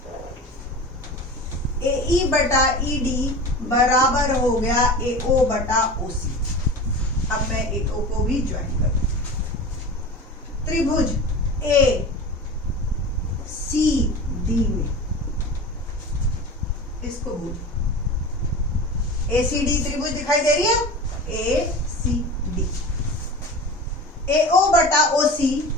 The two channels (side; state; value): both; normal; correlation 0.33